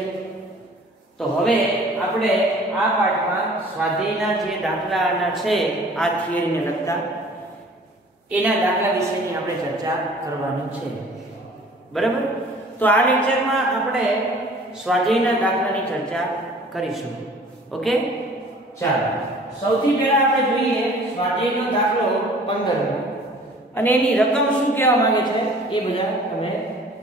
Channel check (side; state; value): both; normal; correlation 0.50